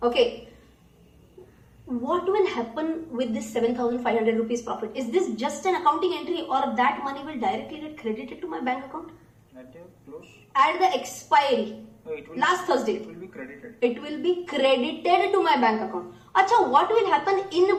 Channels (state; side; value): identical; both; correlation 1.00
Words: Okay. What will happen with this 7,500 rupees profit? Is this just an accounting entry or that money will directly get credited to my bank account? At the close? At the expiry. No, it will Last Thursday. It will be credited. It will be credited to my bank account. Acha, what will happen in